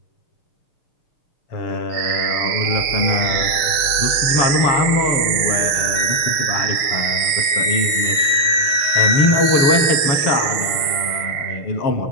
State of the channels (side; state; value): right; late; 6.6 ms